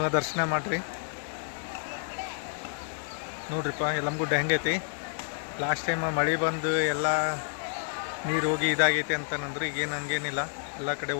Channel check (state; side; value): silent; right; digital silence